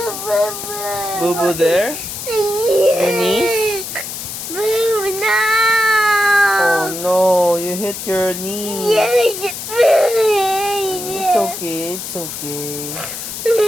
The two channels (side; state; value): left; noise; hiss, 8 dB below the sound